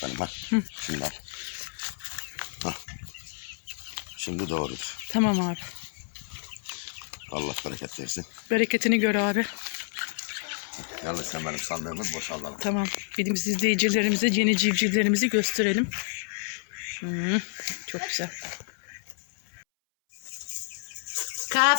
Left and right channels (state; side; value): silent; right; 59 dB below the other